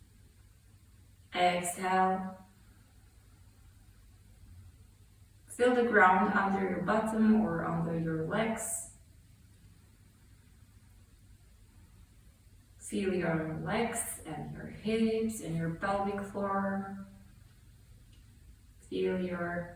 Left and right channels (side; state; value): both; identical; correlation 1.00